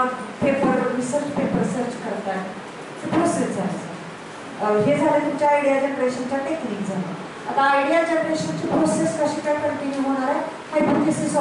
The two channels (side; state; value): both; identical; correlation 1.00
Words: पेपर रिसर्च पेपर सर्च करताय. प्रोसेस आहे. हे झालं तुमच्या आयडिया जनरेशनच्या टेक्निक झालं. आता आयडिया जनरेशनची प्रोसेस कशी काय कंटिन्यू होणार आहे? Hypothesis